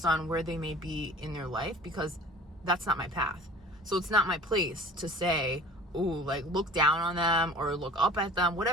on where they may be in their life, because that's not my path. So it's not my place to say, ooh, like, look down on them or look up at them,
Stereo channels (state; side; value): normal; both; correlation 0.44